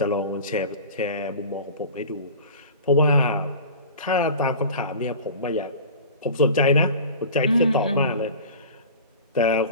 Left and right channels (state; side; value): inverted; both; correlation -0.37